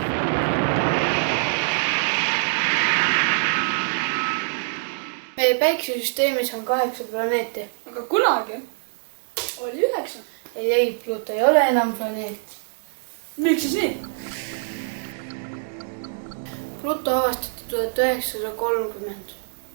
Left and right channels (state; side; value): silent; left; digital silence